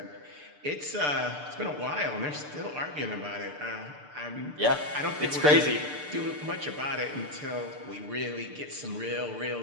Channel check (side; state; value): left; late; 6.8 ms